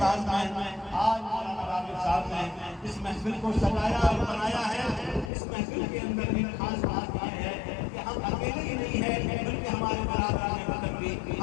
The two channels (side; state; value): right; drops out; at 5.3 s